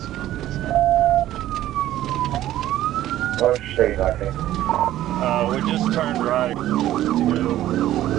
What's your state like it? We just turned right to go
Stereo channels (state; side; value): quieter; left; 13.6 dB